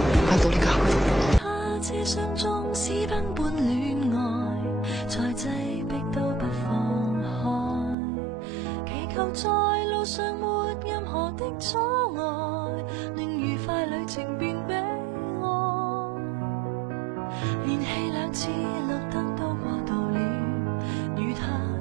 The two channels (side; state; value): left; drops out; at 8.0 s